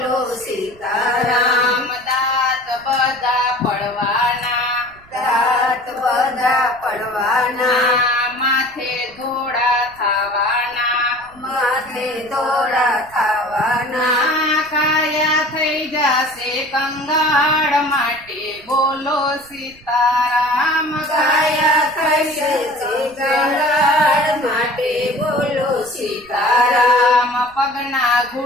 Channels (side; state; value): right; noise; rumble, 26 dB below the sound